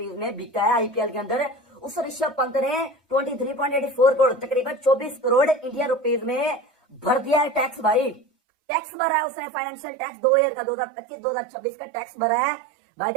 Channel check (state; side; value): drops out; left; at 8.2 s